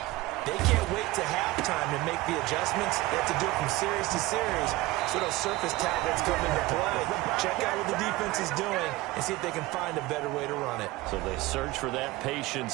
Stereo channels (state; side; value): quieter; left; 19.0 dB